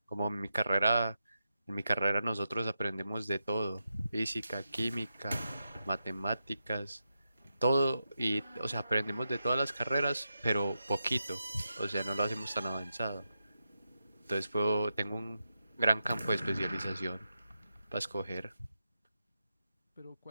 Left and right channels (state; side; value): inverted; both; correlation -0.88